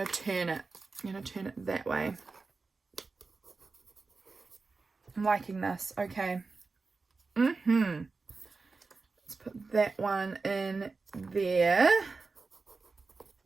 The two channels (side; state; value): left; quieter; 4.1 dB